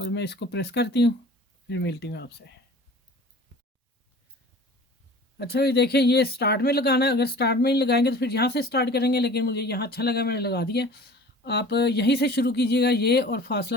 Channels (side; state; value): both; normal; correlation 0.43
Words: मैं इसको प्रेस करती हूँ, फिर मिलती हूँ आपसे। अच्छा ये देखें, ये स्टार्ट में लगाना है, अगर स्टार्ट में ही लगाएंगे तो फिर यहाँ से स्टार्ट करेंगे, लेकिन मुझे यहाँ अच्छा लगा मैंने लगा दिया। आप यहीं से शुरू कीजिएगा ये, और फासला